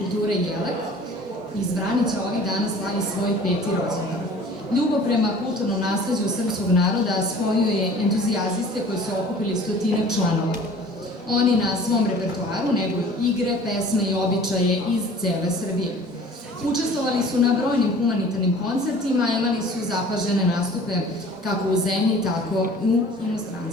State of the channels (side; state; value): both; normal; correlation 0.47